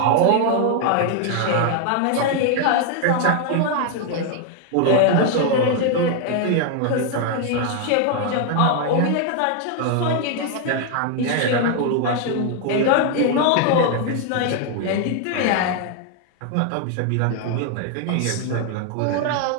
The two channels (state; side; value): different; both; correlation 0.00